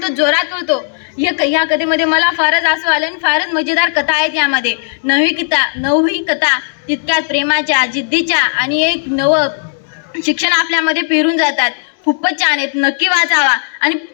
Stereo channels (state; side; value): silent; right; digital silence